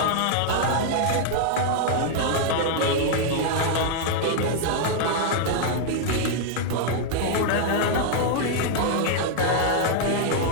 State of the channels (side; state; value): both; different; correlation 0.00